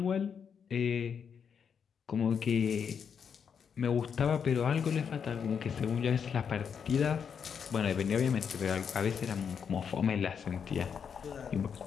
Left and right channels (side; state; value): right; quieter; 7.0 dB